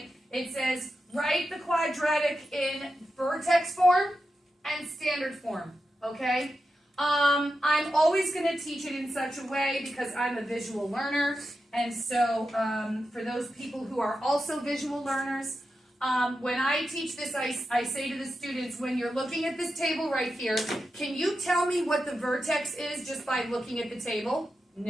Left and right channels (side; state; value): both; normal; correlation 0.89